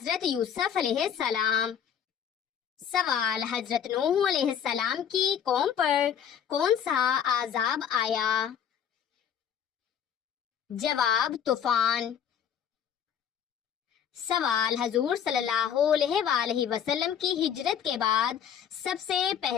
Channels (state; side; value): quieter; right; 8.5 dB